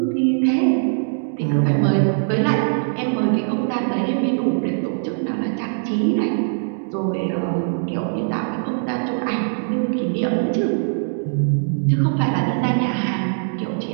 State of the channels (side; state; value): left; silent; digital silence